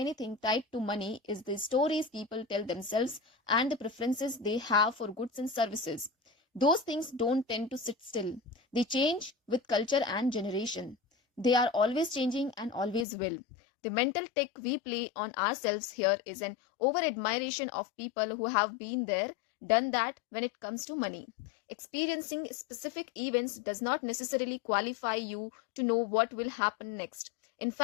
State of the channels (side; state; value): right; drops out; at 13.1 s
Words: tied to money is the stories people tell themselves and the preferences they have for goods and services. Those things don't tend to sit still. They change with culture and generation. They are always changing and always will. The mental trick we play on ourselves here is an over-admiration of people who have been there, done that when it comes to money. Experiencing specific events does not necessarily qualify you to know what will happen next. In